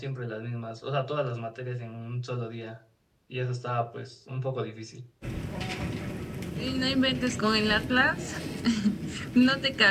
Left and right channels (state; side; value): identical; both; correlation 1.00